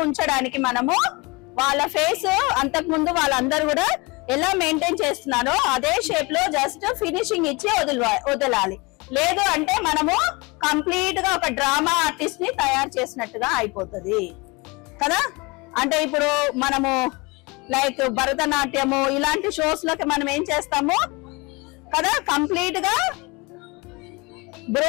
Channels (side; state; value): right; quieter; 26.1 dB